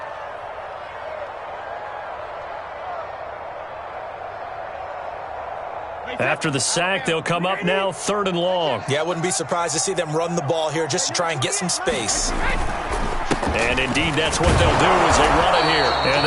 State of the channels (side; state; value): both; identical; correlation 1.00